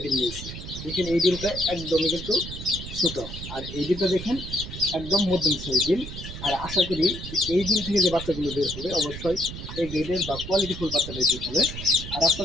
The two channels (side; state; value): right; noise; rumble, 9 dB below the sound